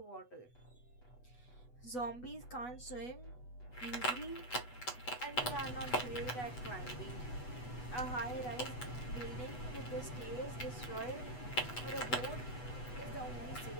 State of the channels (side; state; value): right; late; 8.1 ms